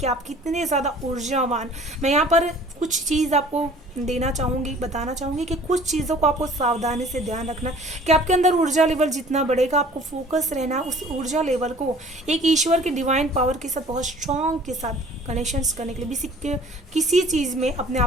आप कितने ज़्यादा ऊर्जावान। मैं यहाँ पर कुछ चीज़ आपको देना चाहूँगी, बताना चाहूँगी कि कुछ चीज़ों को आपको सावधानी से ध्यान रखना कि आपके अंदर ऊर्जा लेवल जितना बढ़ेगा, आपको फोकस रहना उस ऊर्जा लेवल को एक ईश्वर की डिवाइन पावर के साथ बहुत स्ट्रॉन्ग के साथ कनेक्शंस करने के लिए। किसी चीज़ में अपने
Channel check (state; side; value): normal; both; correlation 0.50